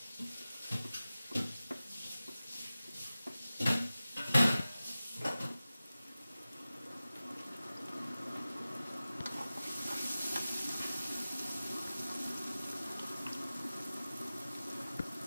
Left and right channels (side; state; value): both; inverted; correlation -0.96